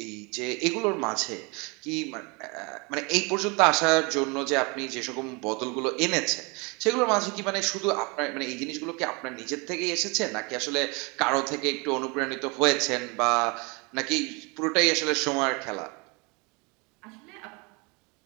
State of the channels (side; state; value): left; quieter; 29.4 dB